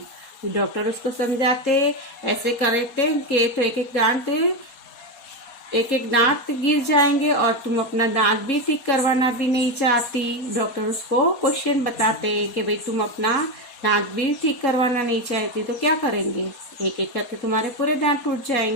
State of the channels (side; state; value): right; late; 4.2 ms